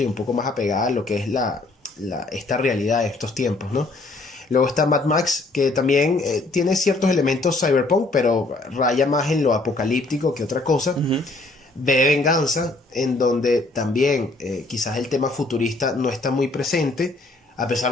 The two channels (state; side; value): quieter; right; 3.1 dB